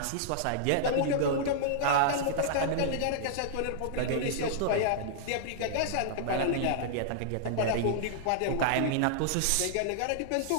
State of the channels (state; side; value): different; both; correlation -0.02